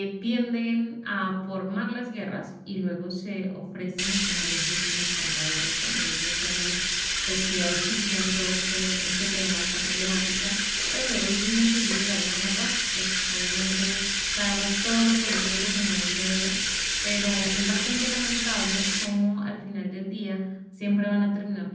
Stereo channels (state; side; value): identical; both; correlation 1.00